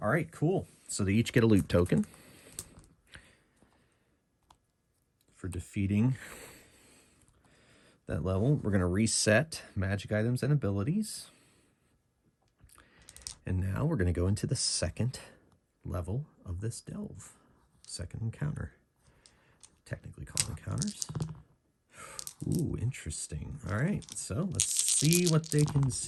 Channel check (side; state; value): both; identical; correlation 1.00